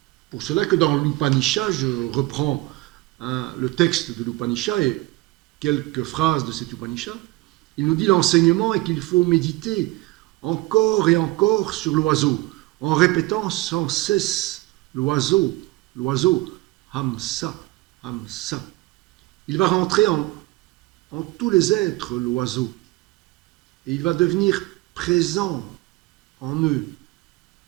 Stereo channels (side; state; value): left; quieter; 19.8 dB